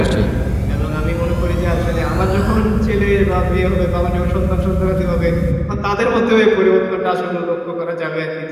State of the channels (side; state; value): both; identical; correlation 1.00